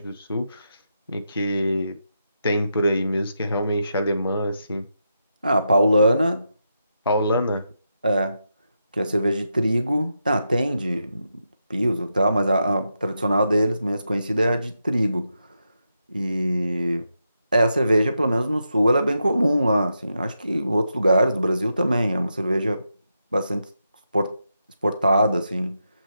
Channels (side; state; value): both; inverted; correlation -0.85